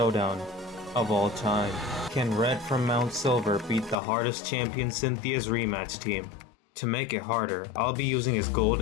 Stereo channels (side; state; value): right; drops out; at 4.0 s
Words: of all time. Can Red from Mount Silver beat the hardest champion Cynthia's rematch team? To make it harder, I'll be using his gold